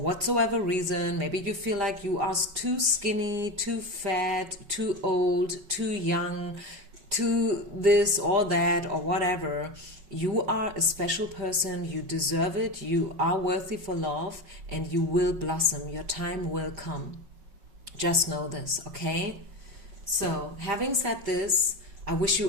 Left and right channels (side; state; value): left; late; 5.4 ms